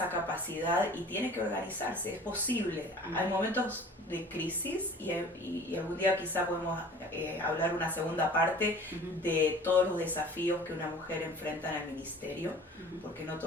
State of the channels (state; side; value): normal; both; correlation 0.46